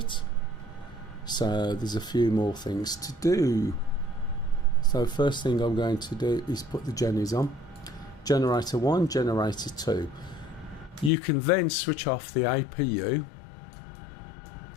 So there's a few more things to do. So first thing I'm going to do is put the jennies on. Generator 1, generator 2. You can then switch off the APU.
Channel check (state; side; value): drops out; right; at 11.1 s